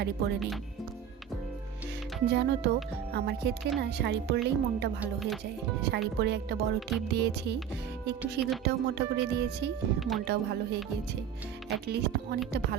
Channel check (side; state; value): left; quieter; 8.6 dB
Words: পরে নিই। জানো তো, আমার ক্ষেত্রে না শাড়ি পরলেই মনটা ভালো হয়ে যায়। শাড়ি পরে একটা বড় টিপ দিয়েছি, একটু সিঁদুরটাও মোটা করে দিয়েছি, মনটাও ভালো হয়ে গিয়েছে। অ্যাটলিস্ট অনেকটা